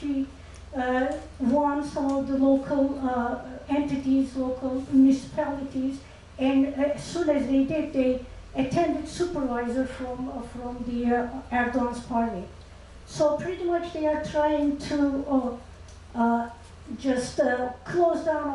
won some of the local entities, local municipalities, and as soon as they did, they attended supervisor from the Erdoğan's party. So pretty much they are trying to just close down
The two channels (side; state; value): both; identical; correlation 1.00